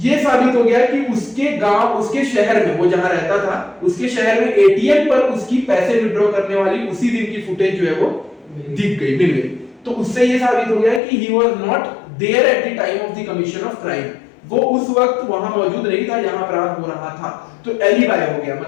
ये साबित हो गया कि उसके गांव, उसके शहर में, वो जहां रहता था, उसके शहर में एटीएम पर उसकी पैसे विड्रॉ करने वाली उसी दिन की फुटेज जो है वो दिख गई, मिल गई। तो उससे ये साबित हो गया कि he was not there at the time of the commission of crime, वो उस वक्त वहां मौजूद नहीं था जहां अपराध हो रहा था। तो एलिबाई हो गया,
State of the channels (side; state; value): right; drops out; at 11.0 s